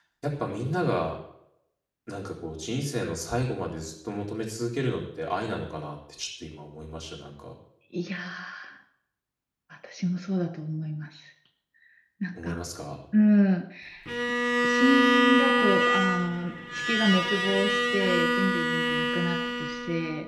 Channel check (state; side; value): identical; both; correlation 1.00